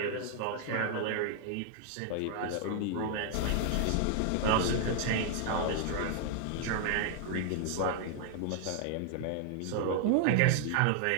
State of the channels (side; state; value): both; different; correlation 0.00